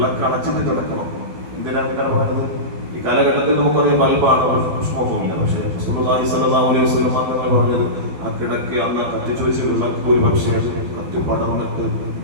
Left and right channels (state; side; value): late; left; 12 ms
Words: അണച്ചിട്ട് കിടക്കണം. എന്തിനാണ് ഇങ്ങനെ പറയുന്നത്? ഈ കാലഘട്ടത്തിൽ നമുക്കറിയാം ബൾബാണ്, പുഷ്പമൊന്നുമില്ല. പക്ഷേ റസൂലുള്ളാഹി സ്വല്ലല്ലാഹു അലൈഹി വസല്ലം തങ്ങൾ പറഞ്ഞത് ആ കിടക്ക് അന്ന് കത്തിച്ചു വെച്ച് വിളക്ക് ഒരു പക്ഷേ കത്തി പടർന്നിട്ട്